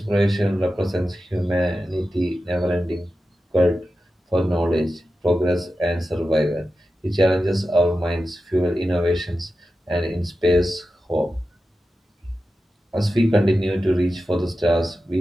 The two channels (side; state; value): both; normal; correlation 0.92